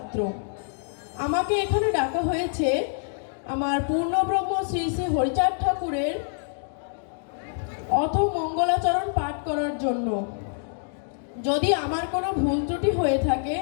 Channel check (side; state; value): right; silent; digital silence